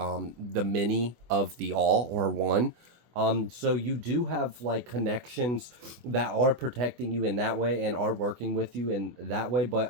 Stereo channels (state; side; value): late; left; 24 ms